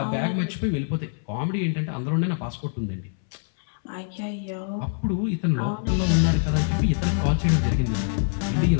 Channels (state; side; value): silent; right; 62 dB below the other